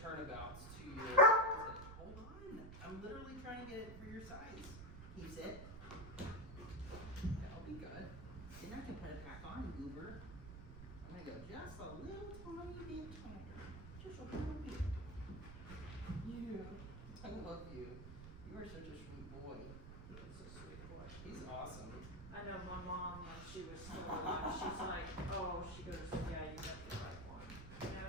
to your, hold on, I'm literally trying to get it for your size. Keeps it. That'll be good. Then I can put it back on, goober. I'm gonna go just a little tiny bit tighter. Just a little bit. You, I love you. You are such a sweet boy. He's a sweet boy. He's awesome. I know my mom, when she was still alive, she's like, oh, she goes, yeah, you got the right one. You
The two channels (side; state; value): right; noise; rumble, 11 dB below the sound